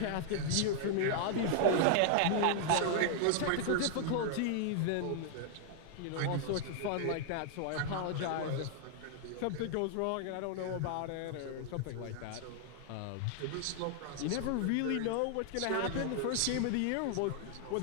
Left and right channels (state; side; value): different; both; correlation 0.00